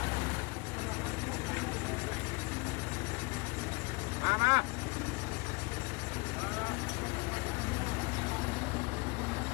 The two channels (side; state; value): right; quieter; 26.7 dB